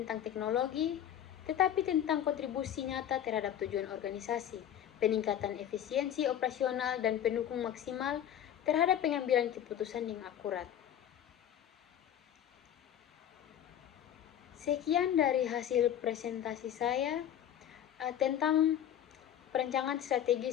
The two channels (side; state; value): right; quieter; 10.4 dB